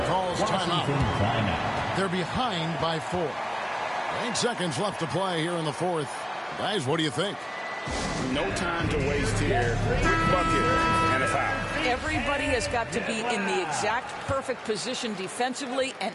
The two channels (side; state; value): both; identical; correlation 1.00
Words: calls timeout. They're behind by 4. 8 seconds left to play here in the fourth. Guys, what do you think? No time to waste here. Quick bucket and a foul. Everybody has got to be in the exact perfect position defensively,